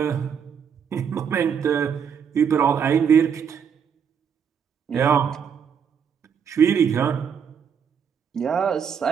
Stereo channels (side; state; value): left; quieter; 7.3 dB